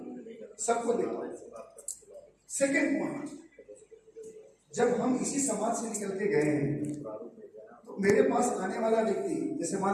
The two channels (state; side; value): identical; both; correlation 1.00